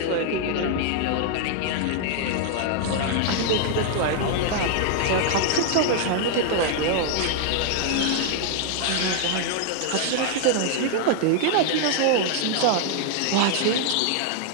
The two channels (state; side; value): different; both; correlation 0.00